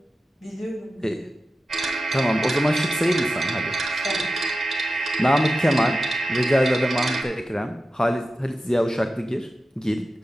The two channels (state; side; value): normal; both; correlation 0.92